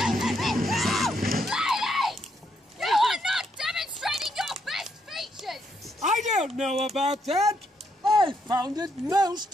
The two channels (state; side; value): normal; both; correlation 0.76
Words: You are not demonstrating your best features! I don't know about that. I found it